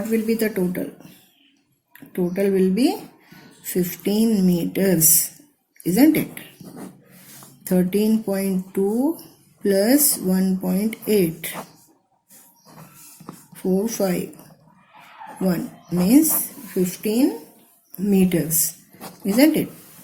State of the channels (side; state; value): both; identical; correlation 1.00